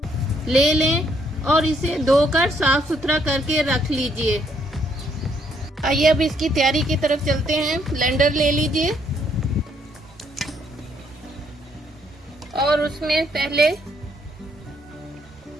ले लें और इसे धोकर साफ सुथरा करके रख लीजिए। आइए अब इसकी तैयारी की तरफ चलते हैं। ब्लेंडर ले लीजिए और उसमें पहले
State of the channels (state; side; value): normal; both; correlation 0.70